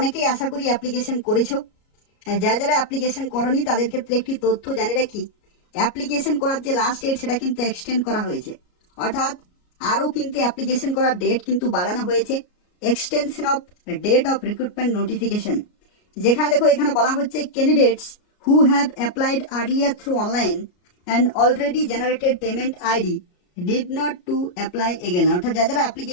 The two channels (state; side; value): late; right; 33 ms